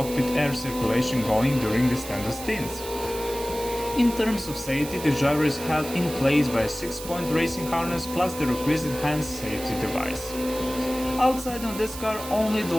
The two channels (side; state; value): right; noise; hiss, 11 dB below the sound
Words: air circulation going during the standard stints. In terms of safety, the driver is held in place by a 6-point racing harness plus the requisite hand safety device. Outside on this car only the